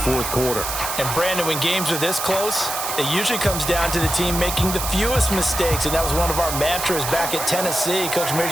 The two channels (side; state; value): right; noise; hiss, 4 dB below the sound